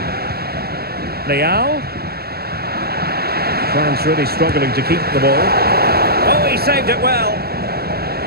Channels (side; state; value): left; late; 0.46 ms